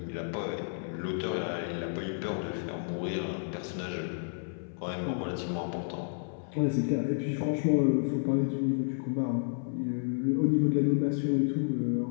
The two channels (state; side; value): silent; right; 57 dB below the other